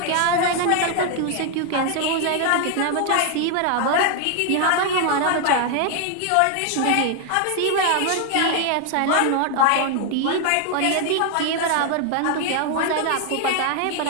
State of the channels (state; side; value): different; both; correlation 0.00